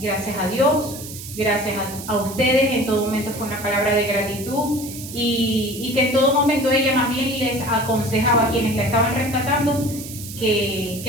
a Dios, gracias a ustedes, en todo momento fue una palabra de gratitud y que en todo momento ella más bien les aconsejaba a quienes la estaban rescatando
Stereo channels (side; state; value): right; noise; hiss, 12 dB below the sound